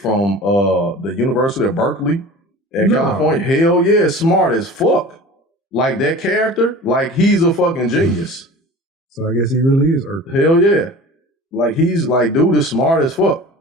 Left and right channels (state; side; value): normal; both; correlation 0.39